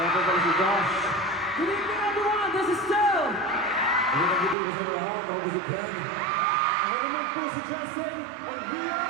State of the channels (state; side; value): drops out; left; at 4.5 s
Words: po pala si Josh. Good evening everyone, this is Stu! Ang mga po sa lahat, ako po si Ken. Ako naman po si Justin, and we are